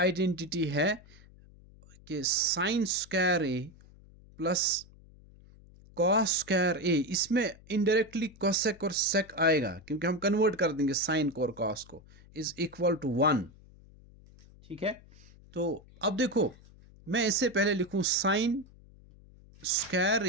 है कि sine square A plus cos square ए, इसमें इनडायरेक्टली कोसेक और सेक आएगा क्योंकि हम कन्वर्ट कर देंगे साइन को और कॉस को, इज इक्वल टू 1, ठीक है। तो अब देखो मैं इससे पहले लिखूं sine square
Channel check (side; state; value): left; noise; hum, 24 dB below the sound